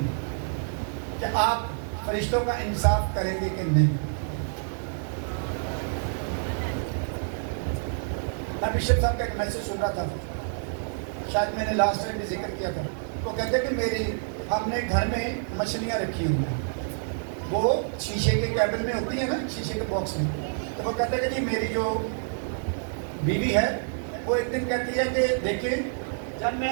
کہ آپ فرشتوں کا انصاف کریں گے کہ نہیں۔ میں بشپ صاحب کا ایک میسج سن رہا تھا، شاید میں نے لاسٹ ٹائم بھی ذکر کیا تھا۔ وہ کہتے ہیں کہ ہم نے گھر میں مچھلیاں رکھی ہوئی ہیں، وہ شیشے کے کیبن میں ہوتی ہیں نا، شیشے کے باکس میں۔ تو وہ کہتے ہیں کہ جی میری جو بیوی ہے وہ ایک دن کہتی ہے کہ دیکھیں جب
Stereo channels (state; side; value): silent; left; 60 dB below the other